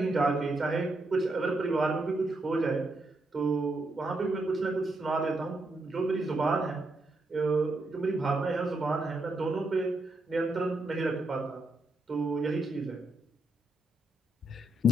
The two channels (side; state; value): both; normal; correlation 0.80